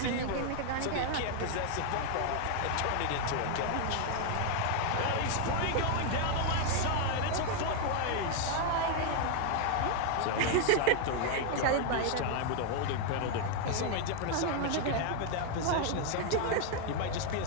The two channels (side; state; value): both; different; correlation 0.00